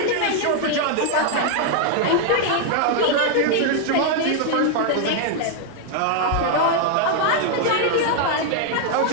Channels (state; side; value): different; both; correlation 0.00